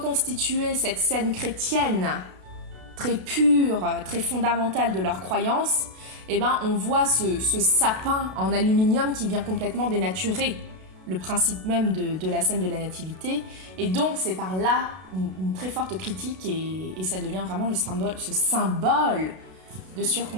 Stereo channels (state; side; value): late; left; 32 ms